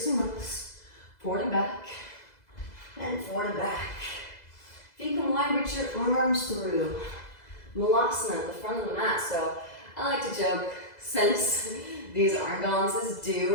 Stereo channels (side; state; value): right; late; 2.0 ms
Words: and rows. Forward and back. And forward and back. Feet come wide, reach your arms through. Malasana at the front of the mat. So I like to joke, since these arm balances